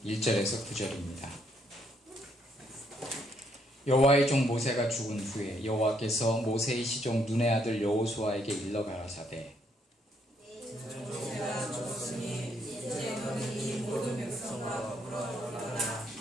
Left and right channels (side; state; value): both; normal; correlation 0.72